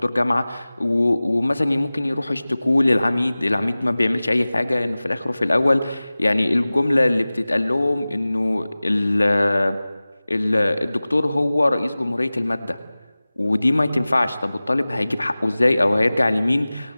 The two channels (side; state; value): both; inverted; correlation -0.98